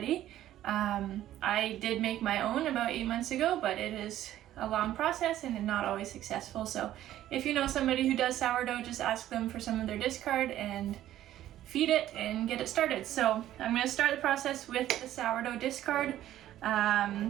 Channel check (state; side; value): quieter; left; 12.9 dB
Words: I did make my own about 8 months ago, but it is a long process and not always successful. So if you know somebody who does sourdough, just ask them for some of their discard and feed it and get it started. So I'm going to start the process with the sourdough discard.